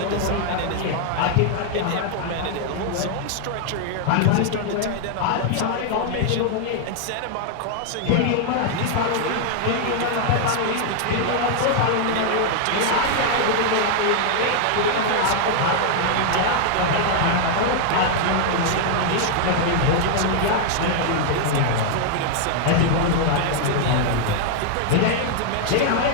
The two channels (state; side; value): different; both; correlation 0.00